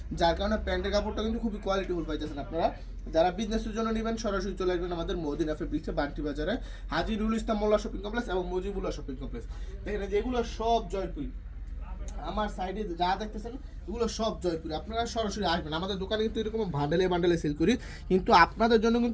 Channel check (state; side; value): identical; both; correlation 1.00